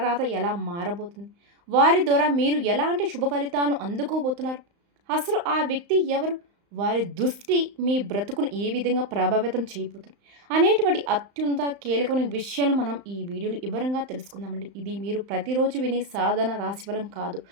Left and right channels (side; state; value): left; late; 35 ms